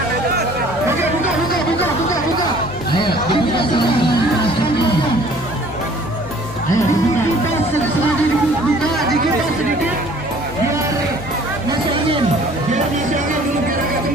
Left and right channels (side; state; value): both; normal; correlation 0.53